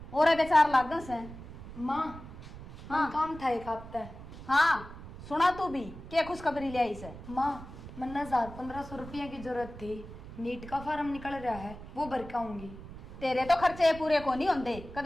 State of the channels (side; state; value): right; noise; rumble, 14 dB below the sound